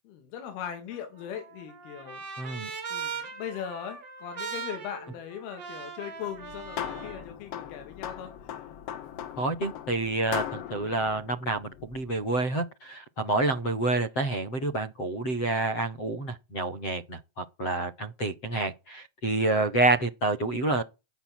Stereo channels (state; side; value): late; right; 7.7 ms